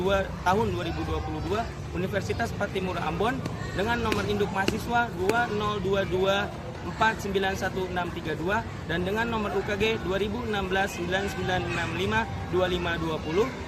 tahun 2022 Universitas Patimura Ambon dengan nomor induk mahasiswa 202249162 dan dengan nomor UKG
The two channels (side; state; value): both; identical; correlation 1.00